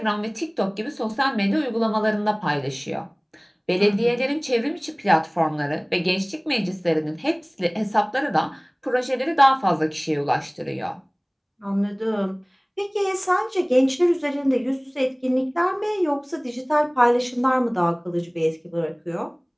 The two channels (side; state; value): both; identical; correlation 1.00